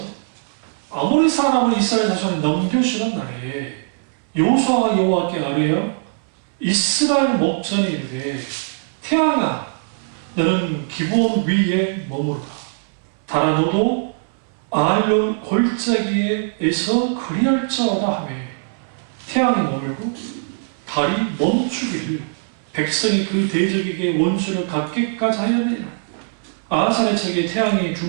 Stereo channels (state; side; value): silent; left; 65 dB below the other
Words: 아모리 사람을 이스라엘 자손에 넘겨주는 날에 여호수아가 여호와께 아뢰어 이스라엘 목전에 이르되 태양아 너는 기브온 위에 머무르라. 달아 너도 아알론 골짜기에서 그리할지어다 하며 태양이 머물고 달이 멈추기를 백성이 그 대적에게 원수를 갚기까지 하였느니라. 아하살의 책에 태양이